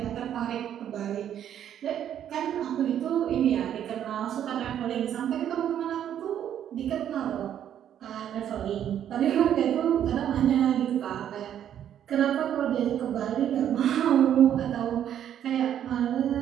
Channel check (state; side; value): quieter; left; 10.1 dB